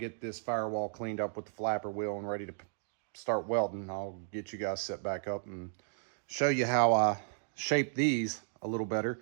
this firewall cleaned up with the flapper wheel and ready to start welding. I'll get you guys set back up and show you how I shape these a little better,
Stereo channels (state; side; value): silent; left; digital silence